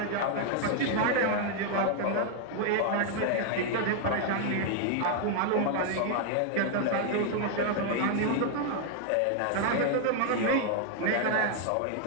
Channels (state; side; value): different; both; correlation 0.00